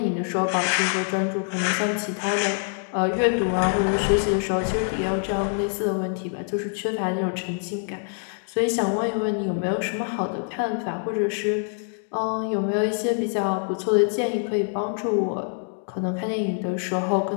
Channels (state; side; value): silent; right; 57 dB below the other